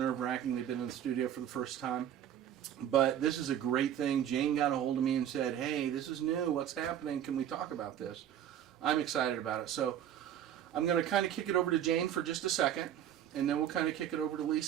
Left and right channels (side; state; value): left; quieter; 10.4 dB